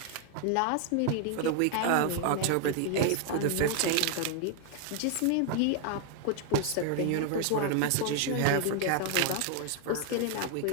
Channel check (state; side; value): different; both; correlation 0.00